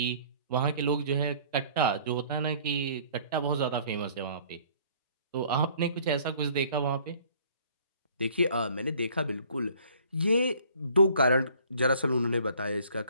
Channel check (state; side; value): inverted; both; correlation -0.56